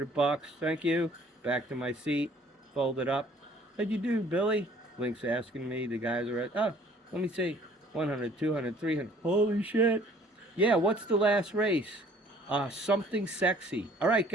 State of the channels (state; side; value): normal; both; correlation 0.56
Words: Thank you. Back to my seat. Folded up. "How'd you do, Billy?" Link's asking me. The guys are at, "Oh, let me see. 100, 200, 300. Holy shit. Yeah, what's the last race? Something sexy. All right,